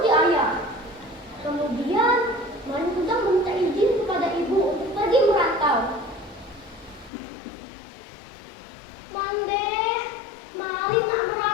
ayah? Kemudian Malin Kundang meminta izin kepada ibu untuk pergi merantau. Mande, Malin nak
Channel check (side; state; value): right; drops out; at 7.1 s